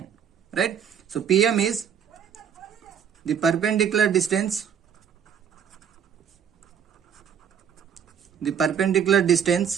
right? So PM is the perpendicular distance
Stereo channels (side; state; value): left; quieter; 8.0 dB